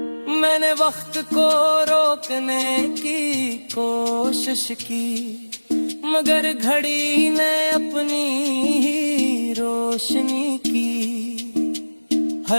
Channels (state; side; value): inverted; both; correlation -1.00